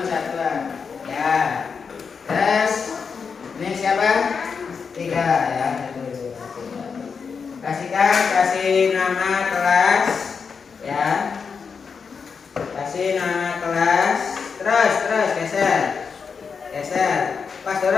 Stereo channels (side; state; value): right; quieter; 5.7 dB